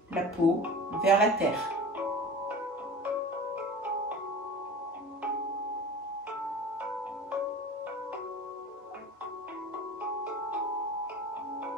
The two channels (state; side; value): normal; both; correlation 0.36